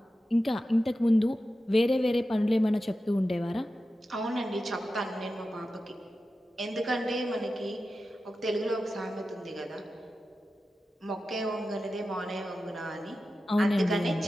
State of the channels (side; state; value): both; normal; correlation 0.93